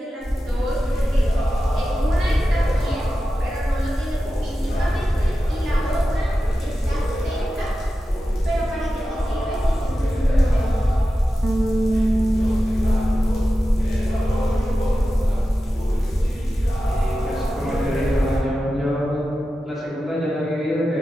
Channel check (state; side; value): normal; both; correlation 0.93